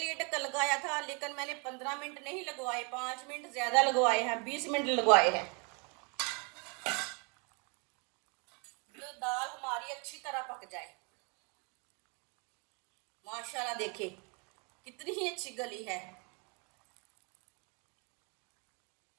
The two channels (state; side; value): quieter; left; 33.5 dB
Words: ढक्कन लगाया था, लेकिन मैंने 15 मिनट नहीं लगवाए, 5 मिनट ज्यादा लगवाए हैं, 20 मिनट लगवाए हैं। जो दाल हमारी अच्छी तरह पक जाए। माशाल्लाह देखिए कितनी ही अच्छी गली है।